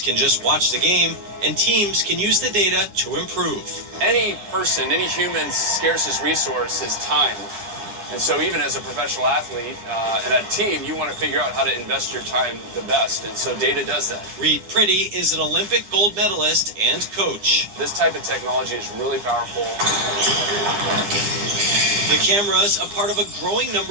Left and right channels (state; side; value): late; left; 9.9 ms